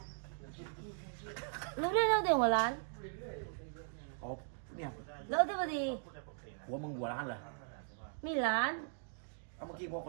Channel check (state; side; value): silent; left; digital silence